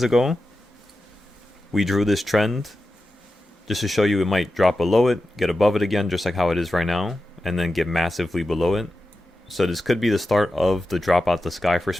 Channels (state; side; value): normal; both; correlation 0.92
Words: ago, we drew this trend just to show you it might drop below it, get above it again, just like how it is right now, and then get massively below it. So this could be the start of the drop out the sky for